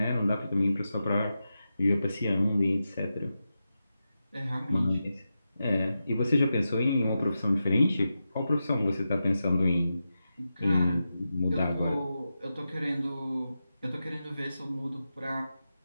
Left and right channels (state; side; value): inverted; both; correlation -0.90